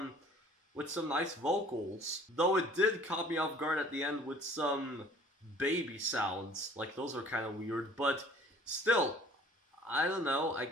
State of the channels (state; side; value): normal; both; correlation 0.52